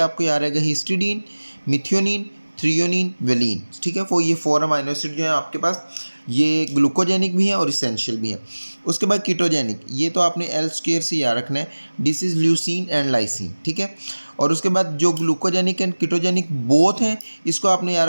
याद रहेगा हिस्टिडीन मिथियोनिन थ्रियोनिन वेलिन, ठीक है। वो ये 4 अमाइनो एसिड जो है आपके पास ये ग्लूकोजेनिक भी हैं और इसेंशियल भी हैं। उसके बाद कीटोजेनिक ये तो आपने एल स्क्वायर से याद रखना है, this is leucine and lysine, ठीक है। और उसके बाद जो ग्लूकोजेनिक एंड कीटोजेनिक बोथ हैं इसको आपने याद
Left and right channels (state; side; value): inverted; both; correlation -1.00